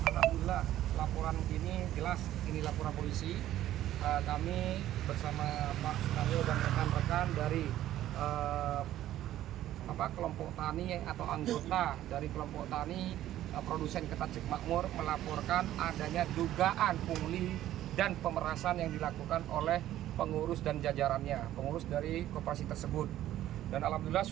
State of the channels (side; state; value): left; quieter; 13.2 dB